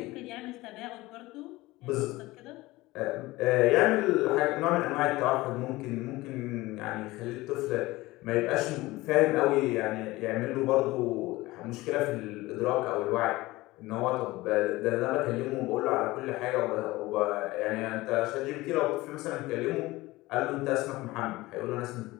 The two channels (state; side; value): quieter; right; 19.6 dB